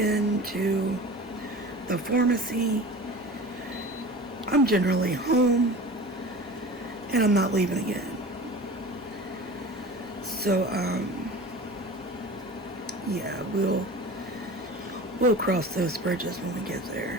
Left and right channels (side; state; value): both; normal; correlation 0.37